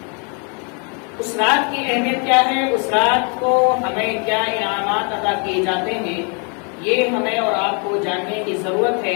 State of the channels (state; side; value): quieter; right; 36.6 dB